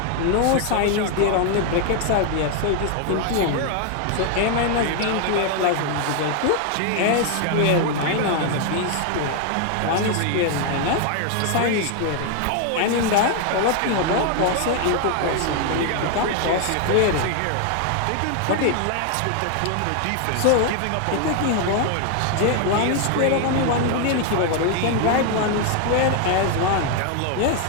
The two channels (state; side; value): different; both; correlation 0.00